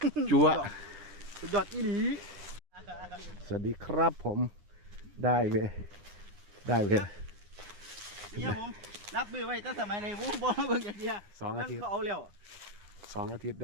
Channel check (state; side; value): late; left; 9.7 ms